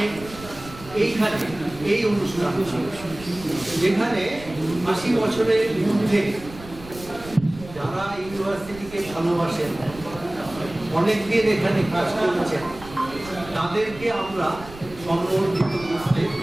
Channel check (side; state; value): right; noise; rumble, 17 dB below the sound